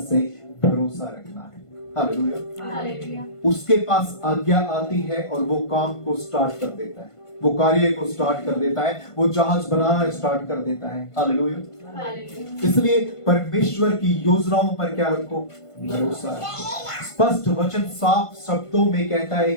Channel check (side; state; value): right; late; 1.5 ms